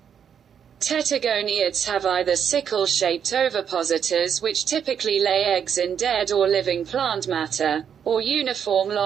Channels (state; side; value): quieter; left; 8.0 dB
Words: Tettigoniids have either sickle-shaped ovipositors, which typically lay eggs in dead or living plant matter, or uniform